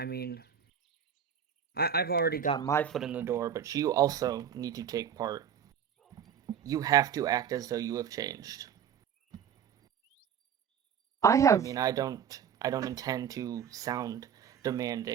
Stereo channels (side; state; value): left; quieter; 8.1 dB